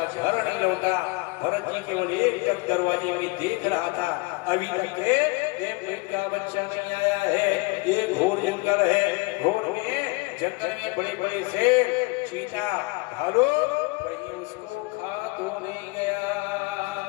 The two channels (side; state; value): right; quieter; 25.4 dB